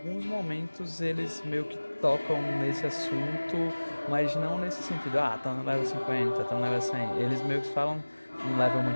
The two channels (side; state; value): both; inverted; correlation -1.00